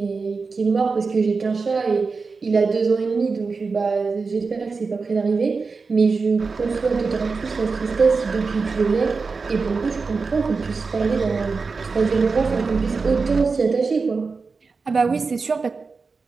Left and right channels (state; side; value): quieter; left; 4.5 dB